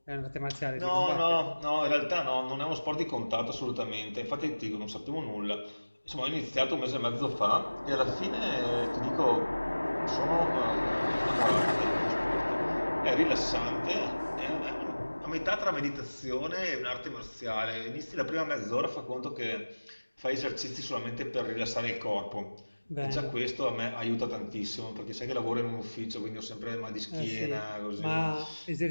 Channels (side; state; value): both; inverted; correlation -1.00